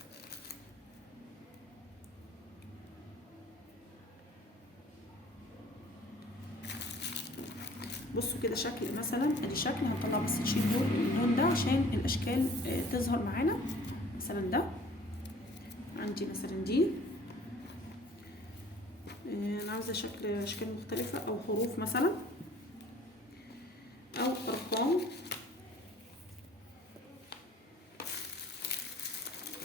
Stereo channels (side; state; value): both; normal; correlation 0.51